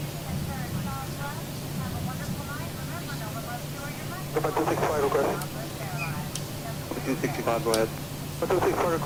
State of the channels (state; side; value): identical; both; correlation 1.00